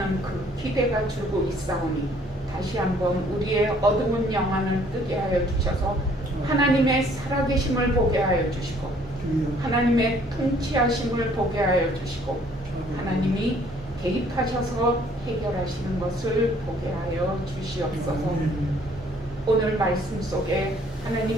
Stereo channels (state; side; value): normal; both; correlation 0.60